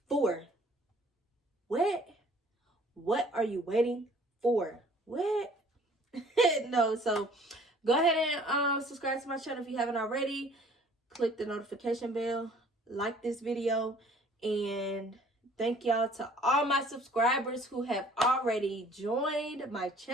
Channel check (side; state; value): both; normal; correlation 0.55